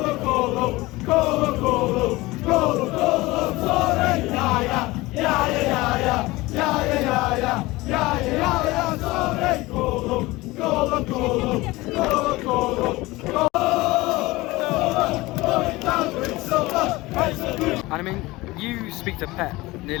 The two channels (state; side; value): quieter; right; 20.6 dB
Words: And I mean, you speak to Pep